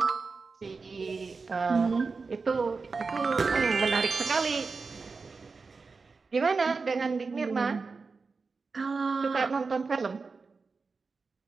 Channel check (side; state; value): left; quieter; 4.4 dB